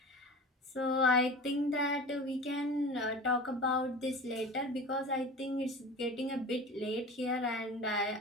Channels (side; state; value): both; normal; correlation 0.35